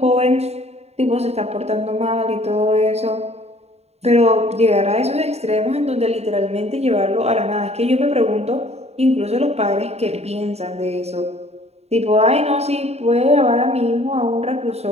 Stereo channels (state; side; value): late; left; 0.31 ms